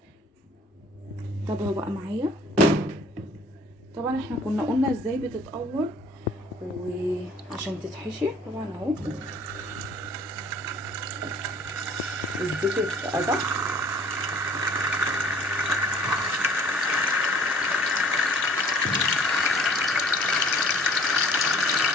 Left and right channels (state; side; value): normal; both; correlation 0.53